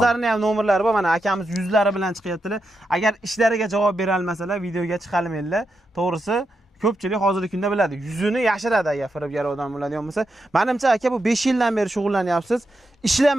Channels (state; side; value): normal; both; correlation 0.86